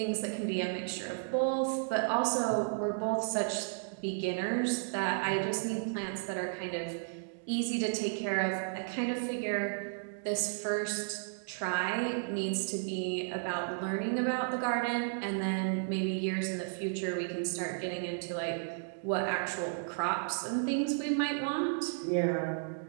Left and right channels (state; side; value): silent; left; digital silence